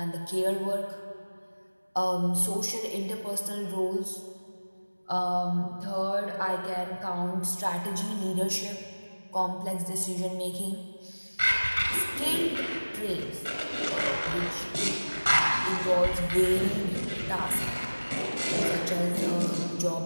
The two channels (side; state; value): both; inverted; correlation -1.00